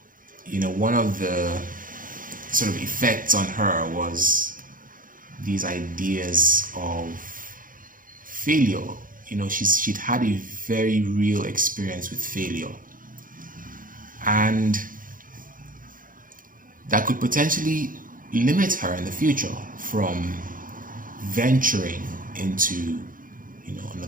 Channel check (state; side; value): late; left; 0.40 ms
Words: One of the sort of effects on her was these ideas of failure. She'd had a very real experience with failure, and that could potentially limit her in the future from venturing into